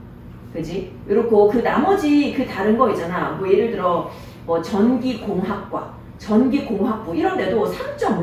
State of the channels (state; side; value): identical; both; correlation 1.00